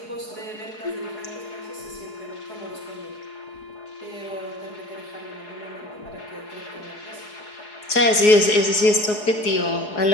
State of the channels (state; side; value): late; right; 4.8 ms